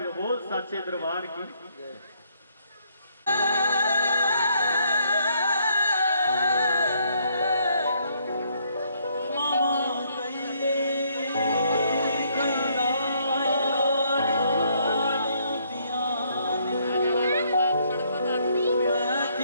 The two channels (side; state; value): both; inverted; correlation -0.69